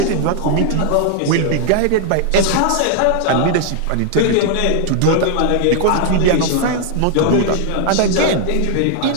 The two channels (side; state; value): both; different; correlation 0.00